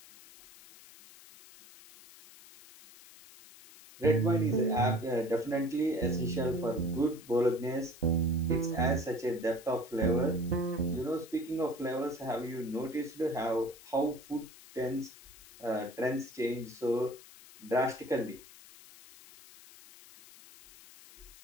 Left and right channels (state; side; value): noise; left; hiss, 20 dB below the sound